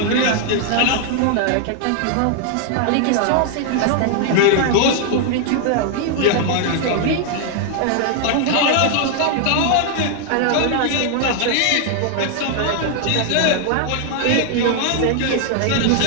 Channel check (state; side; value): different; both; correlation 0.00